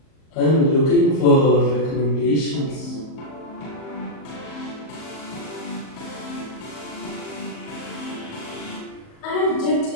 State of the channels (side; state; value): right; late; 38 ms